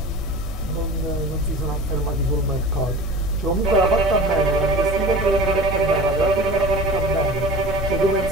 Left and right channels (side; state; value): both; normal; correlation 0.37